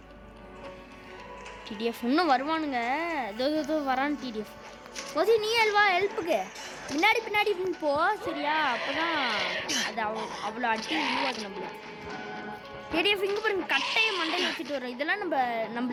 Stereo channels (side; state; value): both; identical; correlation 1.00